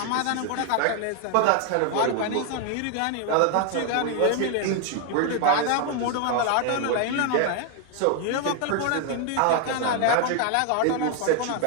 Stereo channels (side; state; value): both; different; correlation 0.00